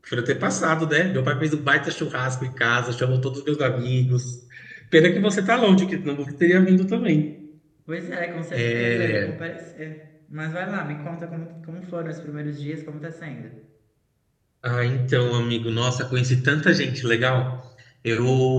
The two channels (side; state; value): both; identical; correlation 1.00